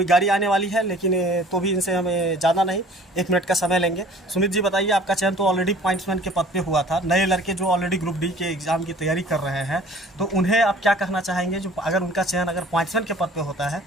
गाड़ी आने वाली है लेकिन तो भी इनसे हमें ज़्यादा नहीं 1 मिनट का समय लेंगे। सुमित जी बताइए, आपका चयन तो ऑलरेडी पॉइंट्समैन के पद पे हुआ था, नए लड़के जो ऑलरेडी ग्रुप डी के एग्ज़ाम की तैयारी कर रहे हैं तो उन्हें आप क्या कहना चाहेंगे? जो अगर उनका चयन अगर पॉइंट्समैन के पद पे होता है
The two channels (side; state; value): both; normal; correlation 0.50